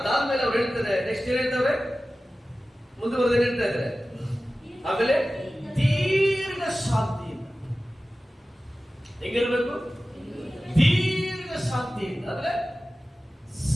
ಅದಾದ್ಮೇಲೆ ಅವ್ರು ಹೇಳ್ತಾರೆ, ನೆಕ್ಸ್ಟ್ ಏನ್ ಹೇಳ್ತಾರೆ, ಮುಂದುವರೆದ ಹೇಳ್ತಾ ಇದ್ದಾರೆ, ಆಮೇಲೆ ದೀರ್ಘ ಶಾಂತಿಯಿಂದ. ಹೆಂಗಿರ್ಬೇಕು? ದೀರ್ಘ ಶಾಂತಿಯಿಂದ ಅಂದ್ರೆ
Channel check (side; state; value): both; normal; correlation 0.96